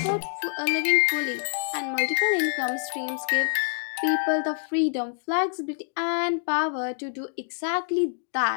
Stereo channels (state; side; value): silent; right; digital silence